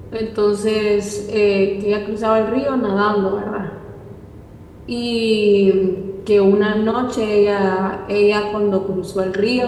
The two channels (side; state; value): both; identical; correlation 1.00